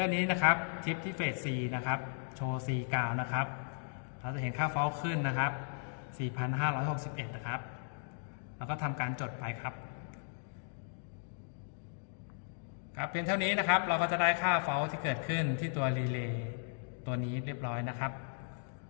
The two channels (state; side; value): silent; right; digital silence